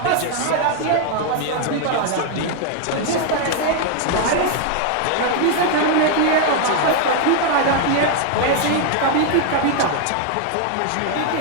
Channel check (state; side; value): different; both; correlation 0.00